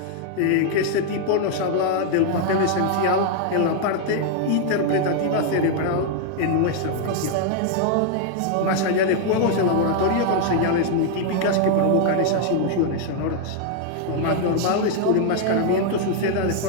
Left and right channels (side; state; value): both; different; correlation 0.00